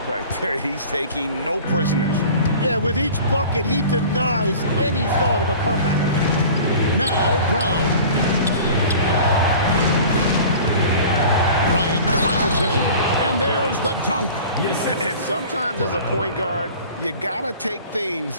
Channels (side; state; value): both; inverted; correlation -0.42